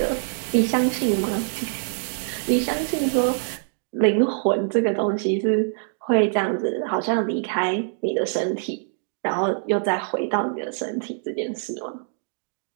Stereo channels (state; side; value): silent; left; digital silence